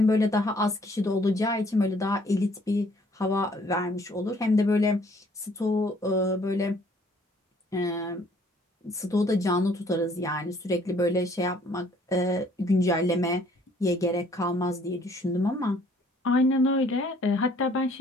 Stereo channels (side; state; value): both; normal; correlation 0.60